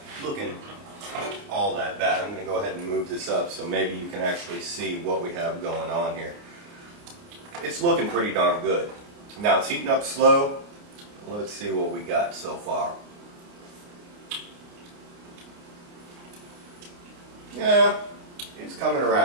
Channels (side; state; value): left; late; 29 ms